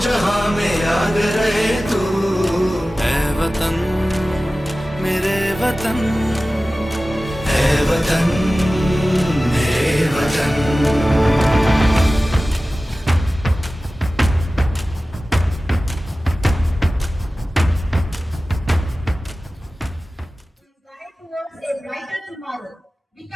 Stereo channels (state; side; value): normal; both; correlation 0.96